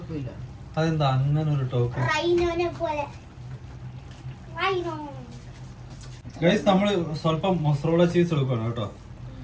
അതെന്താ അങ്ങനെ ഒരു ടോക്ക്? ഗൈസ്, നമ്മൾ സ്വല്പം മൊസറോള ചീസ് എടുക്കുകയാണ് കേട്ടോ.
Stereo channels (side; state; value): both; identical; correlation 1.00